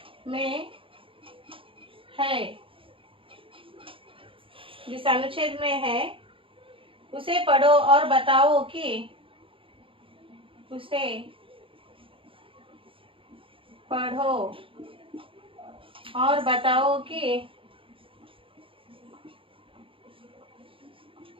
में है, जिस अनुच्छेद में है उसे पढ़ो और बताओ कि, उसे पढ़ो और बताओ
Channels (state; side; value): late; left; 0.26 ms